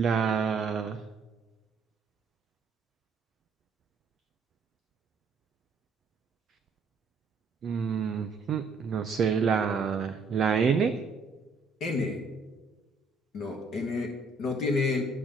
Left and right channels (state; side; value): quieter; left; 3.7 dB